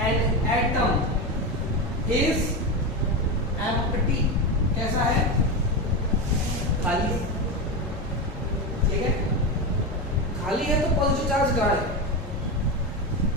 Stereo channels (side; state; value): both; normal; correlation 0.16